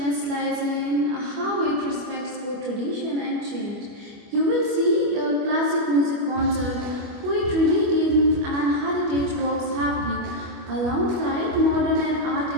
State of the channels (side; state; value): left; late; 25 ms